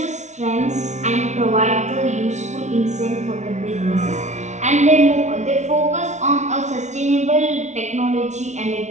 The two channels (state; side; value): late; left; 0.33 ms